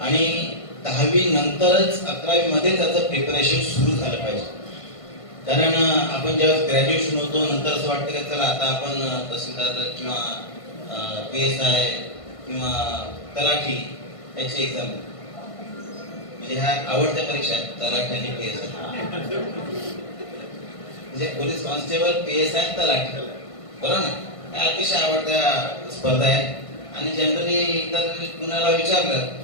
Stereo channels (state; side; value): late; right; 1.5 ms